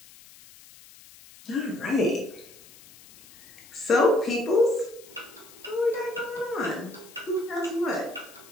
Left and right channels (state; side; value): noise; left; hiss, 22 dB below the sound